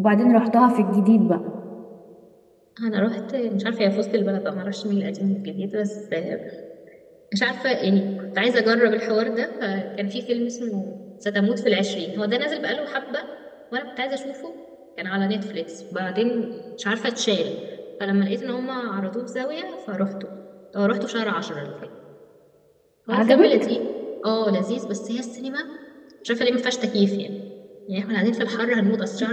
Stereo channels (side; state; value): both; identical; correlation 1.00